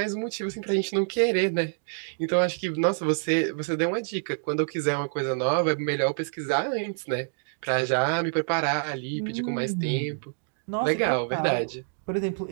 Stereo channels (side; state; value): left; silent; digital silence